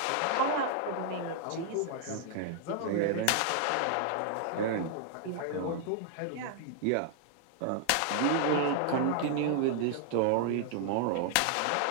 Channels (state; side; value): different; both; correlation 0.00